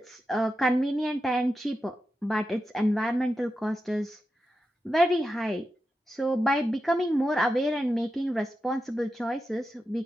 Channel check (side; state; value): both; normal; correlation 0.89